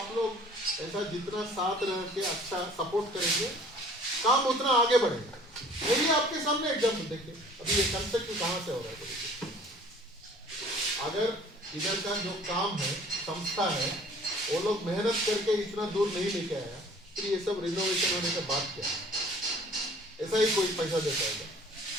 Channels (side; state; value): both; normal; correlation 0.51